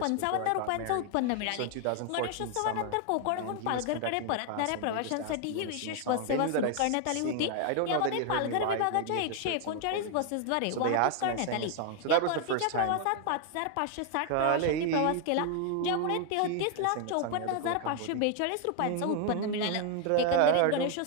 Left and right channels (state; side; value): different; both; correlation 0.00